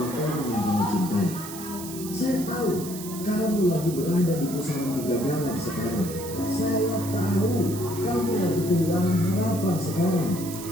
yang kamu cintai. Saya tahu kamu lagi berada di pusaran kegagalan sekarang. Saya tahu kamu lagi kehilangan harapan sekarang.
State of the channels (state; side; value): noise; right; hiss, 11 dB below the sound